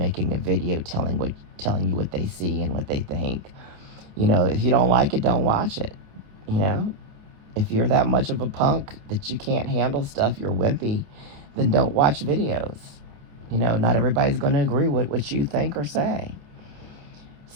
a video telling you what they see and what they think. You know, if you don't like it, don't watch it. You know, if you're that much of a punk that you can't handle stuff, you're wimpy, then don't watch videos. You know, not everybody's going to agree with what you think or say.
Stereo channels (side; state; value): left; late; 28 ms